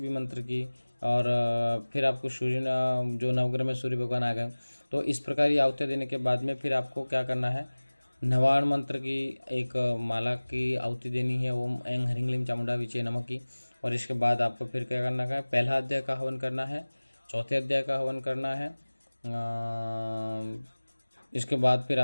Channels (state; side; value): inverted; both; correlation -1.00